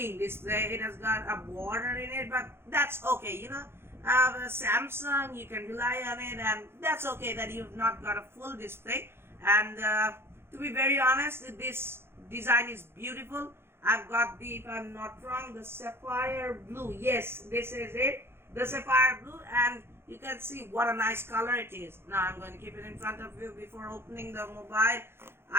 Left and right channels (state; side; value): late; left; 0.11 ms